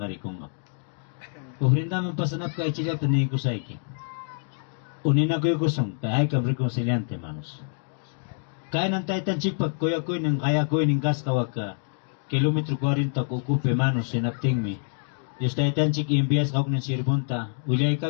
arikunga. Ofrendaman pasanap kay chilak tanay ko sa iki. Unina ko yung kusong, kaya ay kam reconciliante, hermanos. Kaya nang taitan chikpak, kuya ko yung kaya ko yung kaskawag ka. Kilometro 40 kukupe, hermanos, sinapting mi. Diyos taitan chik imbias kawag ng sirbunta. Ulay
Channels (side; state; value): right; silent; digital silence